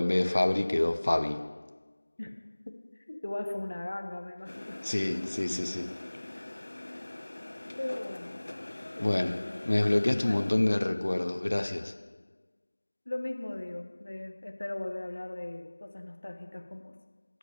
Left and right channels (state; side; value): inverted; both; correlation -1.00